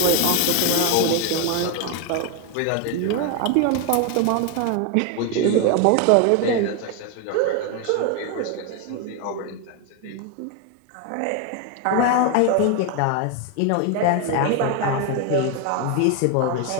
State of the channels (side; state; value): both; different; correlation 0.01